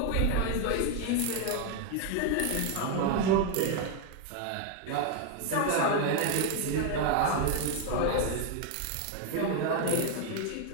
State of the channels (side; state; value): both; different; correlation 0.01